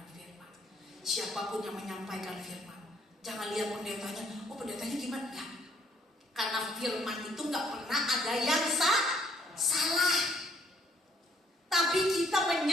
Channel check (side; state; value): both; normal; correlation 0.66